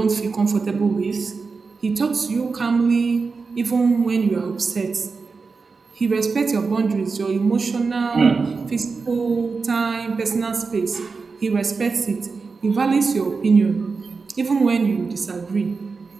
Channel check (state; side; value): quieter; left; 4.6 dB